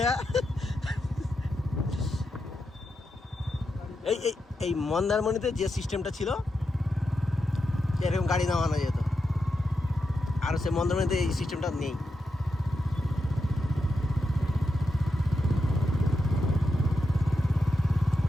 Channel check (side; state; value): both; normal; correlation 0.86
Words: এই এই এই মন্দারমণিতে যে সিস্টেমটা ছিল এরকম গাড়ি নামানো যেত, আর সে মন্দারমণিতে এই সিস্টেমটা নেই।